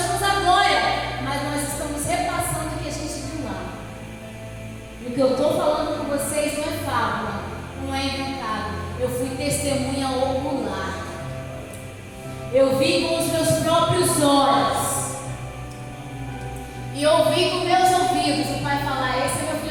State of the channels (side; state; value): both; identical; correlation 1.00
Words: a glória, mas nós estamos repassando o que a gente viu lá. E o que eu estou falando com vocês não é fábula, não é inventado. Eu fui testemunha ocular. Eu vi com os meus próprios olhos. E ouvi com meus ouvidos o Pai falar: esse é meu